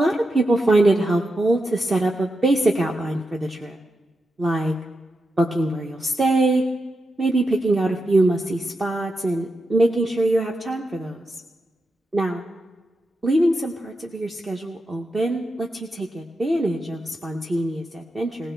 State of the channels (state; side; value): normal; both; correlation 0.87